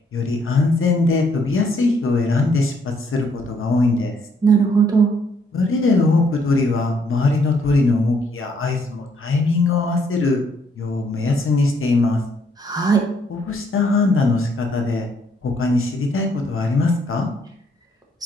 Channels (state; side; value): normal; both; correlation 0.69